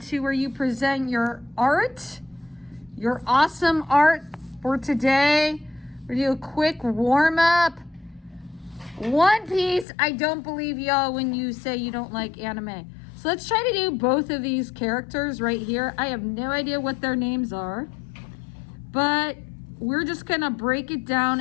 where you present your art, your awesome art for today. We're gonna do a quick warm up. One Piece, I don't believe y'all when you say you don't like anime. So let's try to do both of these characters right here. I have no idea what their names are, but we're just gonna break it down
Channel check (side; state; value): right; drops out; at 9.9 s